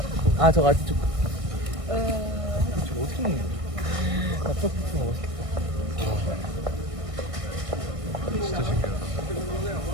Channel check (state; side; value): late; left; 1.6 ms